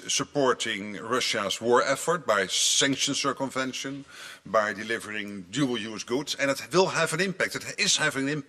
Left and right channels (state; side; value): identical; both; correlation 1.00